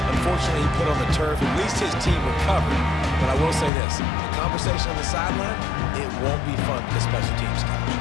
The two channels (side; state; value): right; drops out; at 3.7 s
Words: Unfortunately, he put on the turf. At least his team recovered. But I will say this, the conversation on the sideline, it won't be fun for the special teams coach.